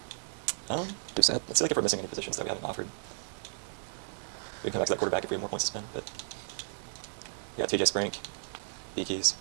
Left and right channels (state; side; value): silent; left; digital silence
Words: Do set. Let's see like if we're missing any positions that we haven't offered. We can come back to that quarterback if we have more points to spend. But we got TJ Sprink, B keys.